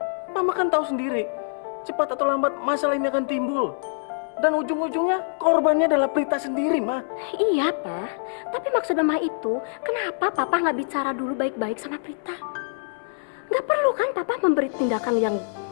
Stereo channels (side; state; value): right; silent; 62 dB below the other